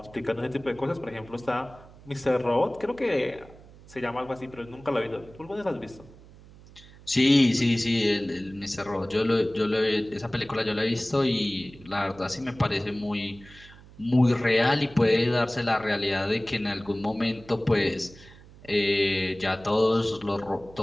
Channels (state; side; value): noise; right; hum, 21 dB below the sound